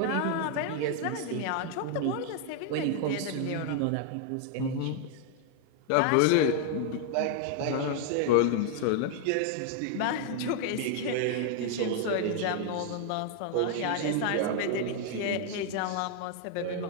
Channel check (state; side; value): different; both; correlation 0.00